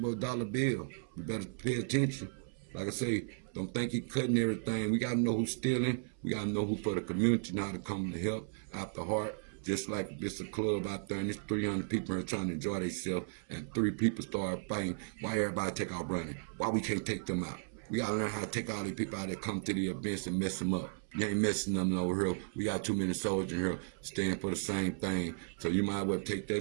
dollar bill. You better pay attention. Like I say, don't think he cutting everything. We gotta know who's stealing. We gotta know who for the community and how to come to help out the heart. Just like if it's a club out there and there's 300 people here trying to enjoy themselves and 3 people start fighting, why everybody take off running? Why we can't take them out? We gotta learn how to take all these people out that come to the events and mess them up. You ain't messing them over here. We got too many soldiers in here staying for the same thing. So you might as well take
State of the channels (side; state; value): left; silent; 54 dB below the other